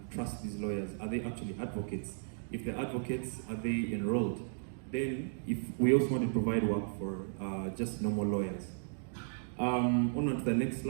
trust these lawyers. Are they actually advocates? If they're advocates, are they enrolled? Then, if we also want to provide work for just normal lawyers. On to the next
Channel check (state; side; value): silent; left; digital silence